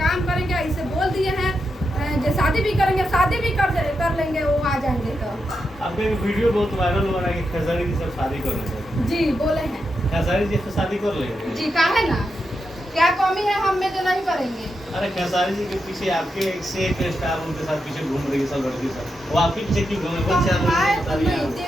काम करेंगे। ऐसे बोल दिए हैं जो शादी भी करेंगे, शादी भी कर लेंगे, वो आ जाएंगे। तो आपका वीडियो बहुत वायरल हो रहा है कि खेसारी जी से शादी कर लेंगे। जी बोले हैं खेसारी जी से शादी कर लेंगे जी, काहे ना, क्या कमी है हम में जो नहीं करेंगे। अरे खेसारी जी के पीछे आपके एक से एक स्टार उनके साथ पीछे घूम रही है सब लड़की सब, वो आपके पीछे क्यों घूमे?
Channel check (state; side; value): normal; both; correlation 0.86